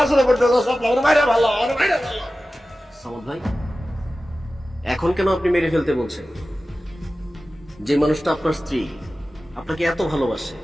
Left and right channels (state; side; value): normal; both; correlation 0.95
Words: আসলে পড়তে চাও শাপলা, আমার মায়েরা ভালো, আমার মায়েরা ভালো। সামদ ভাই, এখন কেন আপনি মেরে ফেলতে বলছেন? যে মানুষটা আপনার স্ত্রী, আপনাকে এত ভালোবাসে,